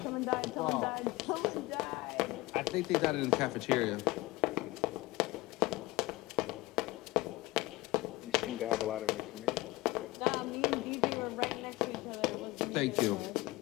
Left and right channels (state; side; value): quieter; right; 20.4 dB